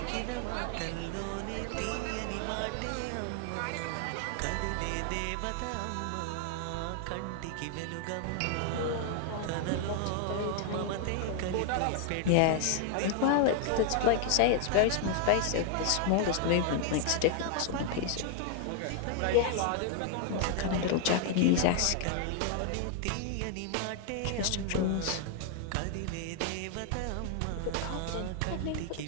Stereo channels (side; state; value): both; different; correlation 0.00